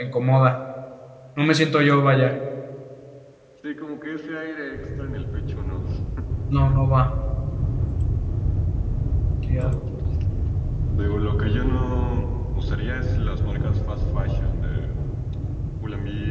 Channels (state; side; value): identical; both; correlation 1.00